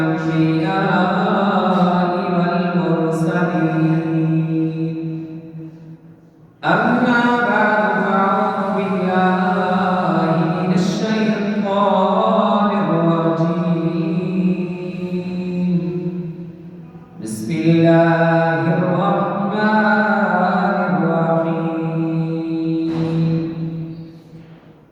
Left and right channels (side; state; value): both; identical; correlation 1.00